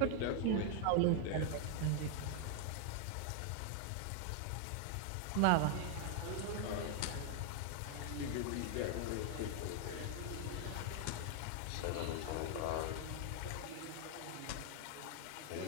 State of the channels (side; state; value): both; different; correlation 0.00